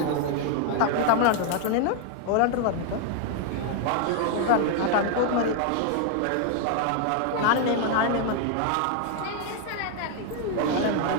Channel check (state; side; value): different; both; correlation 0.00